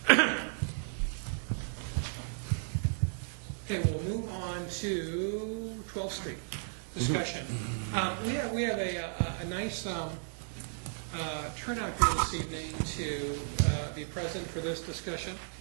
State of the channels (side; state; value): left; silent; digital silence